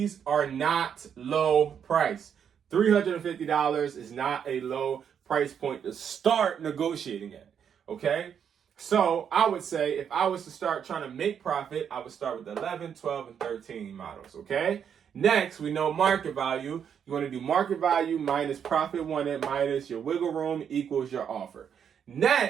are not low price. $350 is not a low price point to start negotiating at, okay? So I would say if I was to start trying to make profit, I would start with 11, 12, and 13 models, okay? Next, we know market value. You want to do market value minus profit wanted minus your wiggle room equals your offer.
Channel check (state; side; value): quieter; left; 8.0 dB